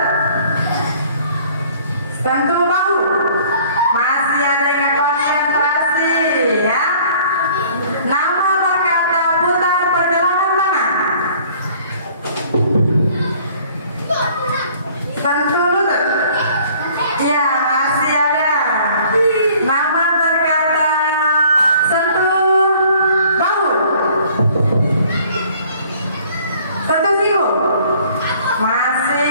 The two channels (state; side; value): inverted; both; correlation -0.55